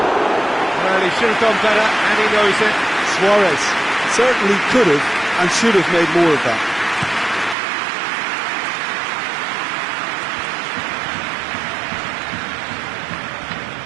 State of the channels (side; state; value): left; drops out; at 7.6 s